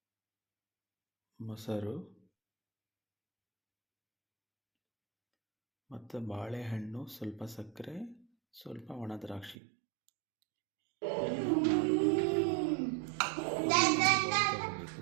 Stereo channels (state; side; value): drops out; left; at 9.6 s